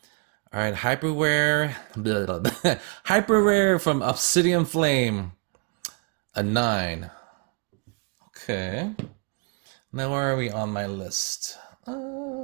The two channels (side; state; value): left; quieter; 33.3 dB